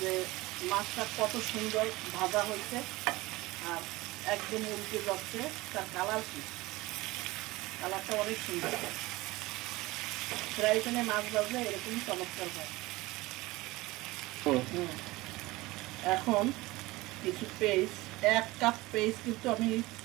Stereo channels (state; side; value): quieter; left; 20.4 dB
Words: মাছটা কত সুন্দর ভাজা হয়েছে আর একদম উল্টে যাচ্ছে। তার কালারটা অনেক সুন্দর। ফ্রাই প্যানে মাছ ভাজলে এরকম চমৎকার হয়। এখন কিছু পেস্ট, 1 কাপ পেস্ট কিন্তু আমি